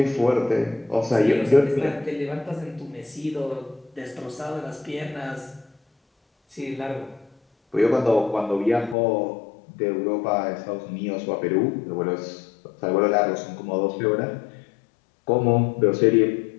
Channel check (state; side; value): drops out; right; at 9.0 s